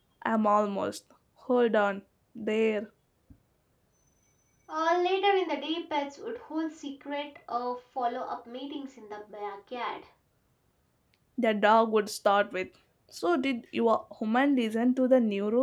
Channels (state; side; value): identical; both; correlation 1.00